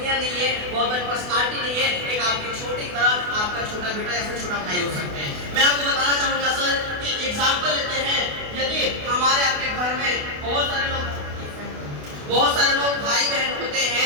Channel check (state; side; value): late; left; 28 ms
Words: नहीं है, बहुत बड़ी पर्सनालिटी नहीं है, एक आपकी छोटी तरह आपका छोटा बेटा या फिर छोटा भाई हो सकते हैं। मैं आपको बताना चाहूंगा सर कि एग्जाम्पल लेते हैं, यदि हमारे आपके घर में बहुत सारे लोग भाई बहन होते